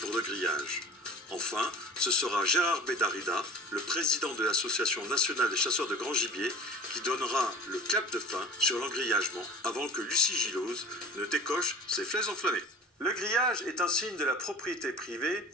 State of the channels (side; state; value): both; normal; correlation 0.41